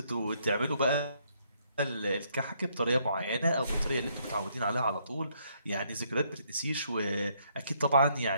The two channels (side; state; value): both; inverted; correlation -0.70